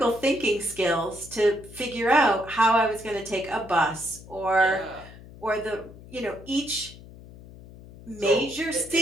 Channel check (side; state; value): left; noise; hum, 18 dB below the sound